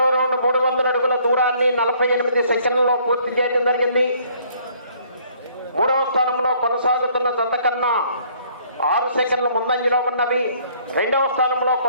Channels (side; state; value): both; inverted; correlation -0.61